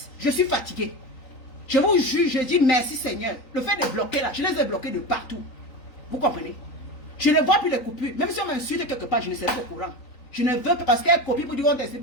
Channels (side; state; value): right; late; 3.9 ms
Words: Je suis fatigué. Je vous juge, je dis merci Seigneur. Le fait de bloquer là, je les ai bloqués de partout. Vous comprenez? Je ne vois plus les coupures. Même si on m'insulte quelque part, je ne serai pas au courant. Je ne veux pas parce qu'elle copie pour dire on teste